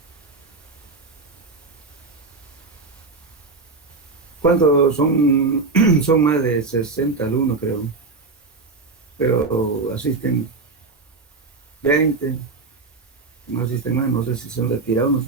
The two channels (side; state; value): left; quieter; 3.9 dB